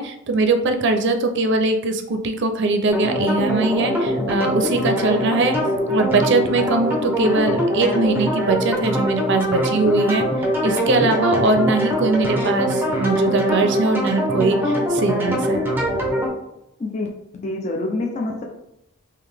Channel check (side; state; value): both; normal; correlation 0.37